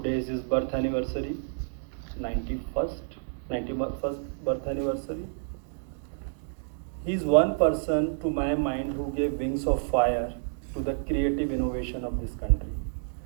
is his birth anniversary, 91st birth anniversary. He is one person, to my mind, who gave wings of fire to the creative innovation of this country.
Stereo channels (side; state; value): left; silent; digital silence